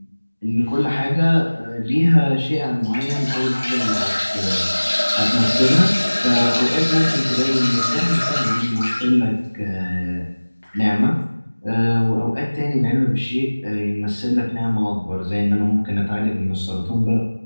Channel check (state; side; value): inverted; both; correlation -1.00